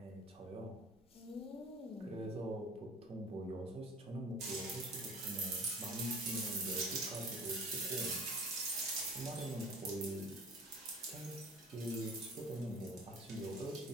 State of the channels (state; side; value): normal; both; correlation 0.43